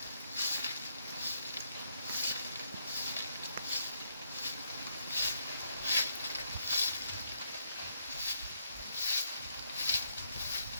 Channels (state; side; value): inverted; both; correlation -0.74